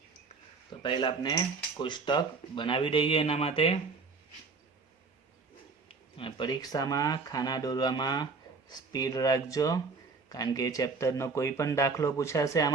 તો પહેલાં આપણે કોષ્ટક બનાવી દઈએ એના માટે. અને પરીક્ષામાં ખાના દોરવામાં સ્પીડ રાખજો, કારણ કે ચેપ્ટરનો કોઈ પણ દાખલો પૂછાશે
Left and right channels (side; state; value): left; quieter; 4.4 dB